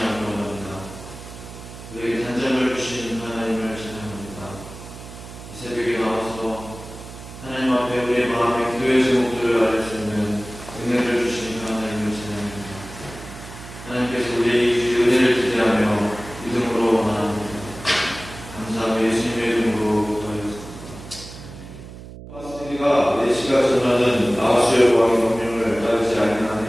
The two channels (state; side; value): noise; right; hum, 14 dB below the sound